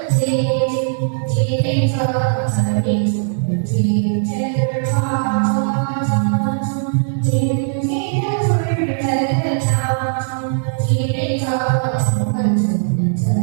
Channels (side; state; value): left; silent; digital silence